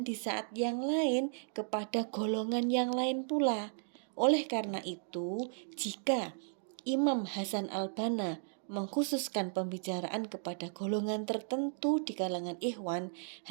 di saat yang lain kepada golongan yang lain pula. Oleh karena itu, jika Imam Hasan al-Banna mengkhususkan pembicaraan kepada golongan tertentu di kalangan ikhwan,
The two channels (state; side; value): silent; left; digital silence